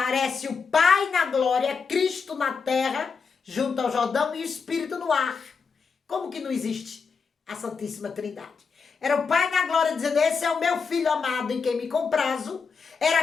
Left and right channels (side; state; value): right; quieter; 5.4 dB